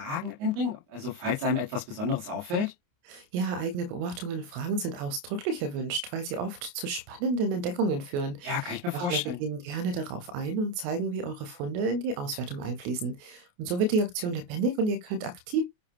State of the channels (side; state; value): left; late; 28 ms